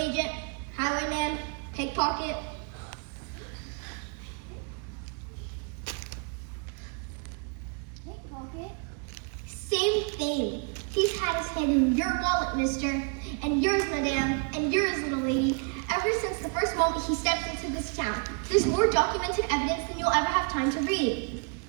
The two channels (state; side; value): quieter; left; 36.7 dB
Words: highwayman, pickpocket. Pickpocket? Same thing. He's had his hand in your wallet, mister, and yours, madame, and yours, little lady, ever since the first moment he stepped into this town. There's more documented evidence than you'll ever have time to read.